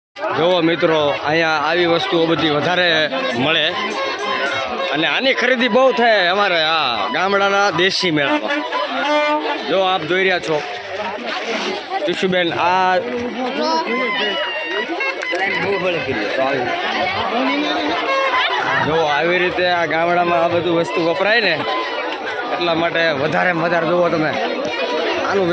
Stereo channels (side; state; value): both; identical; correlation 1.00